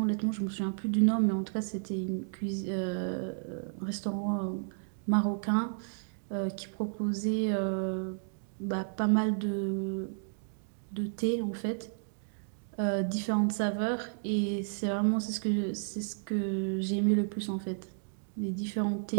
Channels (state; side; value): silent; left; digital silence